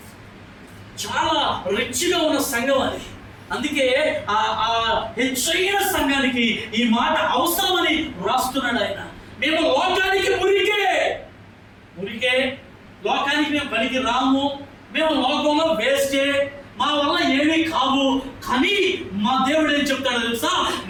చాలా రిచ్గా ఉన్న సంఘం అది, అందుకే ఆ హెచ్చైన సంఘానికి ఈ మాట అవసరమని రాస్తున్నాడు ఆయన. మేము లోకానికి మురికే, లోకానికి మేము పనికి రాము, మేము లోకంలో వేస్టే, మా వల్ల ఏమీ కావు. కానీ మా దేవుడు ఏం చెప్తాడో తెలుసా?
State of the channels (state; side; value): identical; both; correlation 1.00